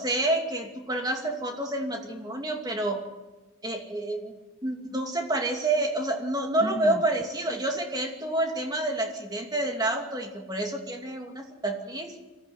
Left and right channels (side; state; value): both; normal; correlation 0.30